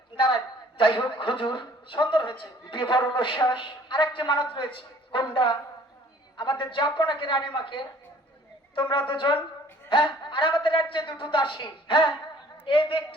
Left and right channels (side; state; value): both; normal; correlation 0.55